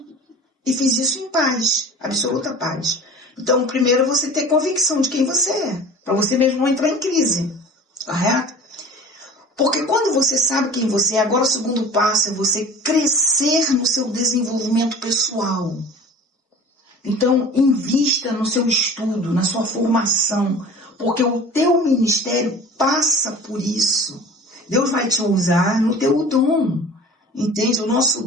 E fiz isso em paz, absoluta paz. Então, primeiro você ter convicção de quem você é, para você mesmo não entrar em crise, correto? Porque quando você sabe quem você é, agora o segundo passo é você crescer no seu desenvolvimento pessoal. Então, invista no seu estudo, na sua formação, porque o teu ministério passa por isso. Deus vai te usar no teu dom, entende? O nosso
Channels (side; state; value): both; normal; correlation 0.41